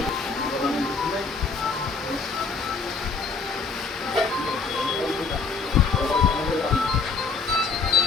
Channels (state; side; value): quieter; right; 4.7 dB